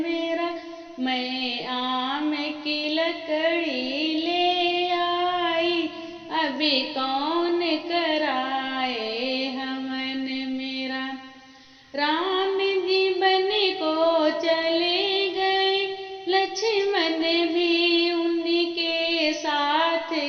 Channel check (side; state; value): both; identical; correlation 1.00